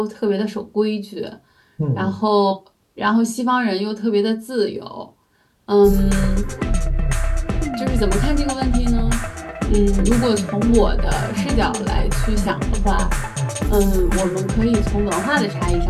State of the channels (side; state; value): both; identical; correlation 1.00